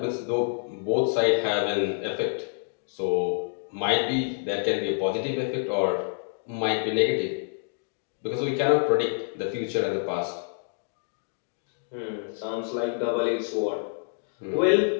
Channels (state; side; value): silent; right; digital silence